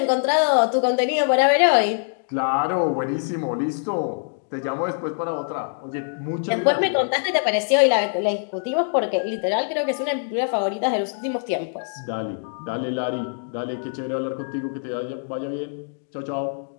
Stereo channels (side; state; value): right; silent; digital silence